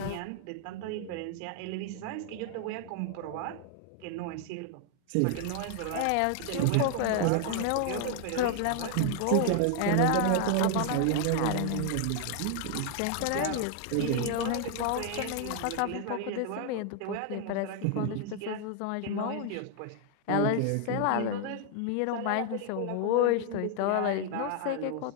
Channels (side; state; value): both; different; correlation 0.00